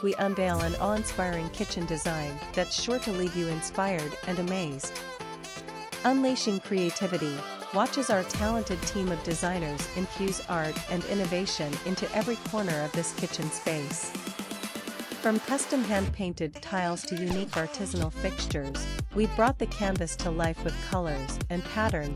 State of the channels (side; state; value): both; identical; correlation 1.00